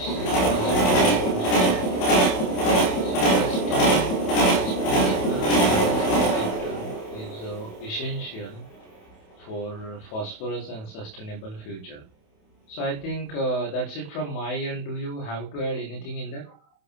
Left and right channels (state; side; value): late; right; 27 ms